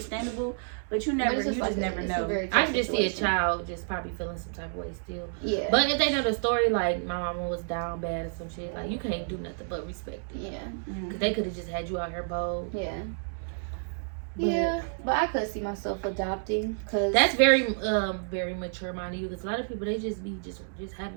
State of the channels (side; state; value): left; silent; digital silence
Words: but you But never, it's you like just never it's a know. very I tough can just see a situation. child just probably feeling some type of way still. Yeah. But if they know the story, like my mama was down bad or some shit, like you can't do nothing but respect it. Yeah. Mm. Cause they could have just had you out here bold. Yeah. But- Yeah, but I could see myself adopting because That's very mature minded you. Cause a lot of people they just be just having